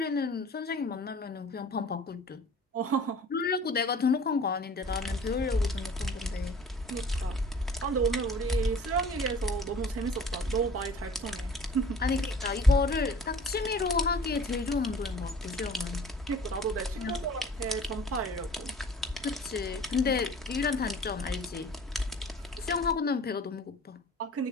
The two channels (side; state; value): both; normal; correlation 0.46